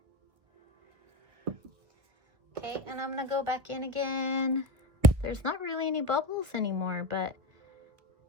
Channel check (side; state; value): left; late; 1.9 ms